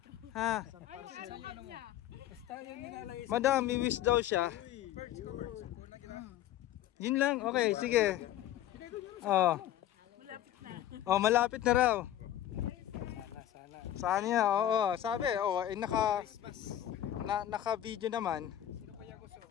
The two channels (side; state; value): right; quieter; 12.2 dB